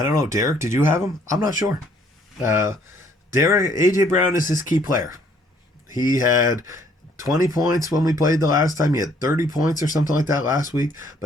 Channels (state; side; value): normal; both; correlation 0.63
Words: don't know. Derek, did you have him? I'm not sure. A.J. Brown is his key player. He had 20 points when we played the last time. He had 30 points or something like that last week.